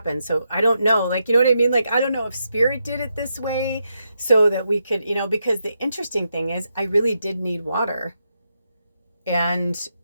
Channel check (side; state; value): both; inverted; correlation -0.83